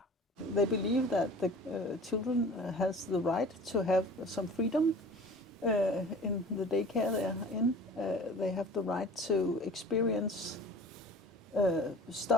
They believe that the children has the right to have some freedom in the daycare they are in. They have the right to experience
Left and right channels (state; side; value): normal; both; correlation 0.43